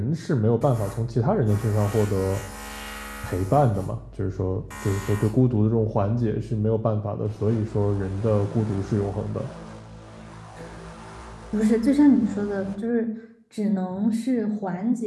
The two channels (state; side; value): identical; both; correlation 1.00